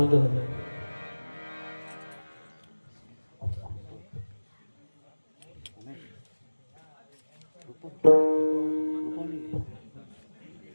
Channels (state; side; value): inverted; both; correlation -1.00